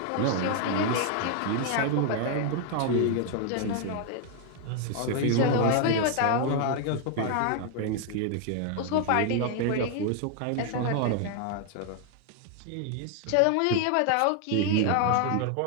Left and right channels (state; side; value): different; both; correlation 0.00